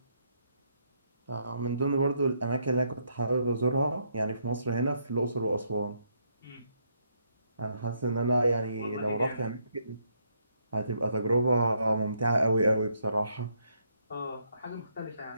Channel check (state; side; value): inverted; both; correlation -0.73